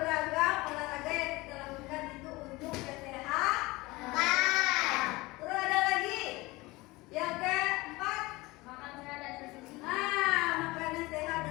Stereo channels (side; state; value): right; quieter; 21.7 dB